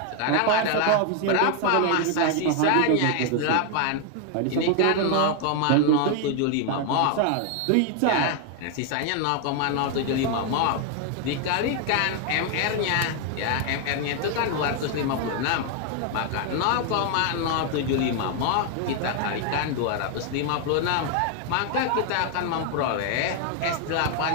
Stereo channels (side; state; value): both; different; correlation 0.01